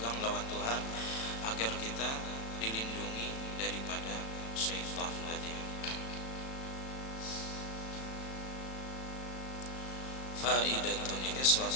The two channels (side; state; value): right; late; 36 ms